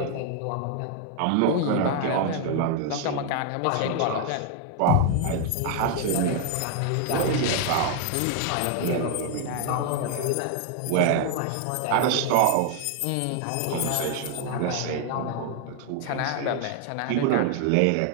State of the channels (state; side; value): different; both; correlation 0.00